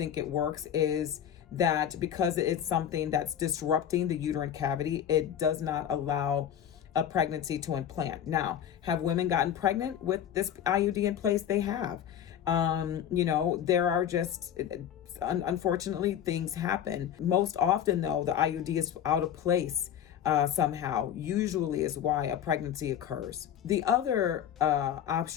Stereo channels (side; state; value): right; quieter; 9.7 dB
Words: it works is that because it's something that's disrupting the uterine cavity, it does not allow a pregnancy to implant. Now, have women gotten pregnant with this IUD in place? They have. There are just, unfortunately, things happen. Most often, though, the IUD is out of place somehow, usually is why a pregnancy occurs. The other